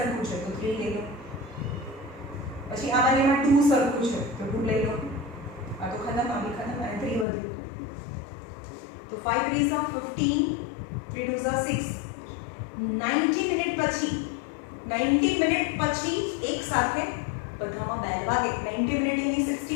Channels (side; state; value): right; drops out; at 7.2 s